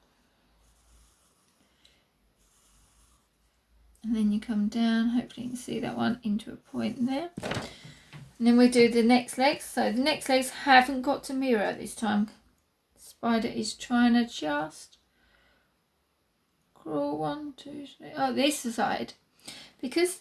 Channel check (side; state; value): both; identical; correlation 1.00